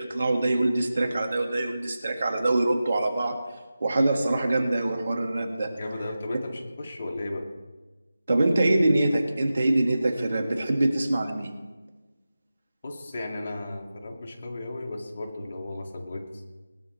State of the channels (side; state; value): both; inverted; correlation -0.94